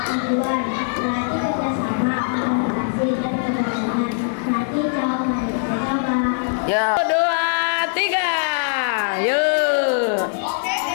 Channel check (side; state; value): right; silent; 56 dB below the other